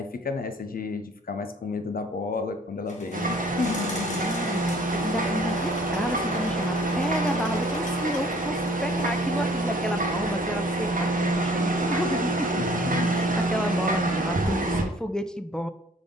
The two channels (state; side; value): normal; both; correlation 0.56